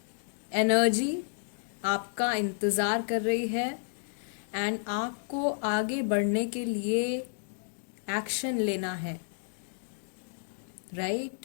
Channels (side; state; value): right; silent; digital silence